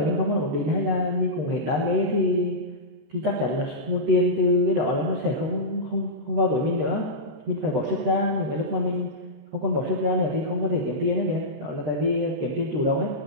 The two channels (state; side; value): late; left; 13 ms